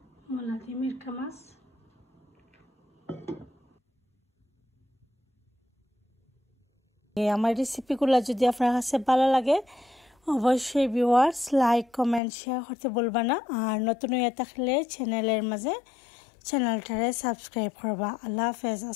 মূলা দিয়ে মিরকা মাছ। আমার রেসিপিগুলো যদি আপনার কাছে ভালো লাগে অবশ্যই ভিউয়ার্স লাইক কমেন্ট শেয়ার করতে বলবা না, আর নতুন হয়ে থাকলে চ্যানেলের মাঝে চ্যানেলটারে সাবস্ক্রাইব করবা। আল্লাহ হাফেজ,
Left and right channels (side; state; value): right; drops out; at 12.2 s